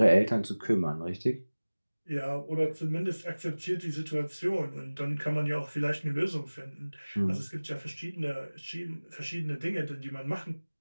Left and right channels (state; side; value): inverted; both; correlation -1.00